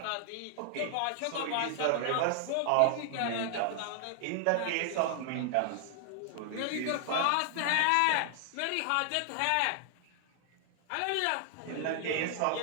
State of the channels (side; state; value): both; different; correlation 0.00